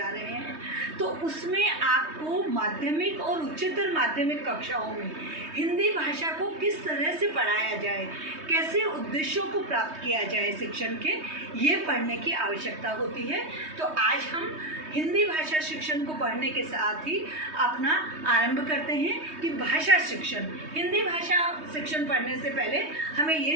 रहे हैं। तो उसमें आपको माध्यमिक और उच्चतर माध्यमिक कक्षाओं में हिंदी भाषा को किस तरह से पढ़ाया जाए, कैसे उद्देश्यों को प्राप्त किया जाए शिक्षण के, ये पढ़ने की आवश्यकता होती है। तो आज हम हिंदी भाषा शिक्षण को पढ़ने के साथ ही अपना आरंभ करते हैं कि भाषा शिक्षण, हिंदी भाषा शिक्षण पढ़ने से पहले हमें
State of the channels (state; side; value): late; left; 3.2 ms